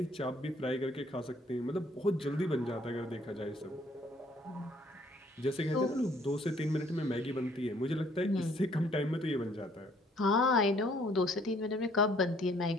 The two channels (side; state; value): both; normal; correlation 0.62